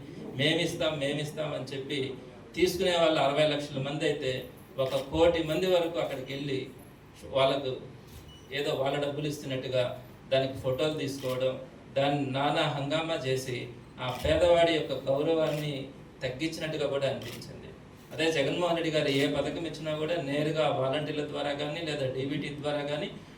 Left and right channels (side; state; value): both; identical; correlation 1.00